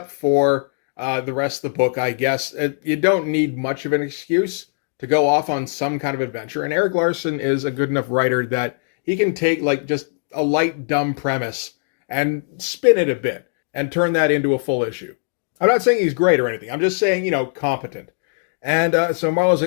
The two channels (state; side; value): silent; right; 60 dB below the other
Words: for the rest of the book, I guess. You don't need much of an excuse to go off on some kind of adventure. And Erik Larsen is a good enough writer that he can take like just a light, dumb premise and spin it a bit and turn that into a full issue. I'm not saying he's great or anything. I'm just saying, competent. And so Marlowe's